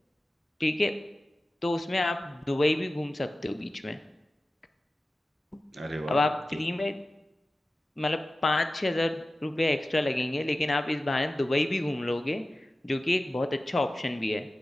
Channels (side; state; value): both; normal; correlation 0.95